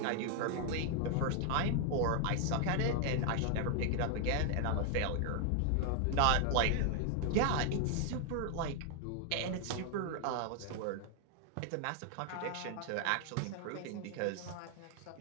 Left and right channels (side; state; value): both; different; correlation 0.00